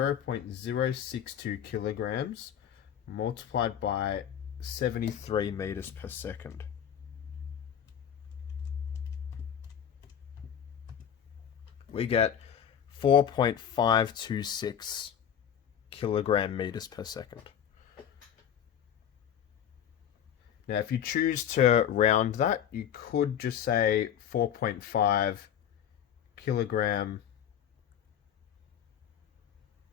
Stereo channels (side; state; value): right; quieter; 9.2 dB